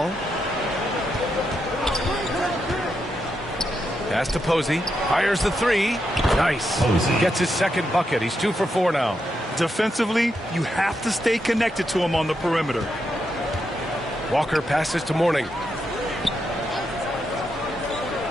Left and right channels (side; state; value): both; normal; correlation 0.83